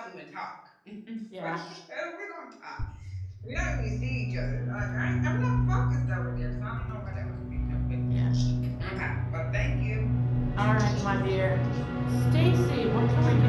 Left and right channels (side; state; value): both; identical; correlation 1.00